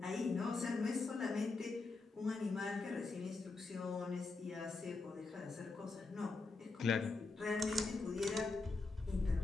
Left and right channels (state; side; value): quieter; right; 3.8 dB